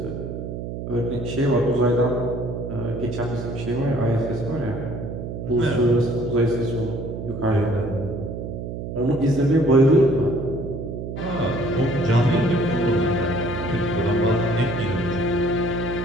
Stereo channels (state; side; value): noise; right; hum, 7 dB below the sound